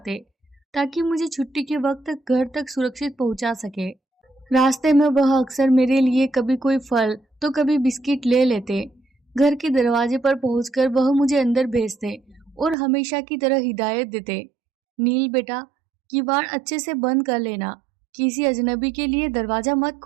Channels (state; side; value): drops out; left; at 12.8 s